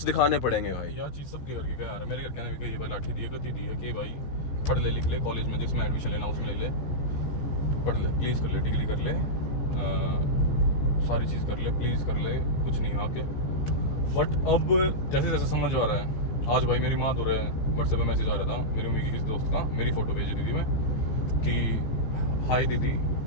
दिखाने पड़ेंगे भाई। यह चीज़ सबके घर की क्या यार, मेरे घर के ने भी कही भाई लाठी दी है, कती दी है कि भाई पढ़ ले लिख ले, कॉलेज में जिसमें एडमिशन लेना उसमें ले ले, पढ़ ले प्लीज़, कर ले डिग्री कर ले, सारी चीज़ कर ले प्लीज़, कर ले, कुछ नहीं आके। बट अब जैसे जैसे समझ आ रहा है, आज भाई मेरी माँ दो रहे व्हाट्सएप पे मैसेज आ रहा था मेरी मम्मी की किसी दोस्त का, मेरी फ़ोटो भेजी दीदी में कि हाय दीदी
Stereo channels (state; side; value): late; right; 14 ms